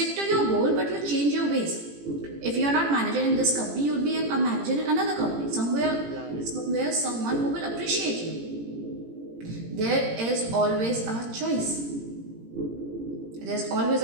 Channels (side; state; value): left; late; 18 ms